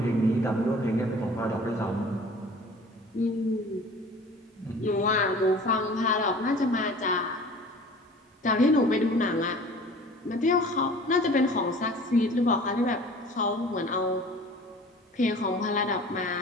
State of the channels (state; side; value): normal; both; correlation 0.45